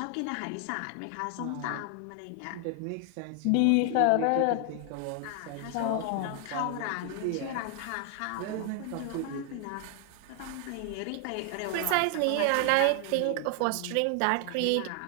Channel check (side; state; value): both; different; correlation 0.00